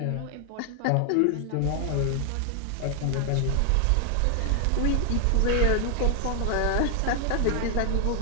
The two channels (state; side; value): different; both; correlation 0.00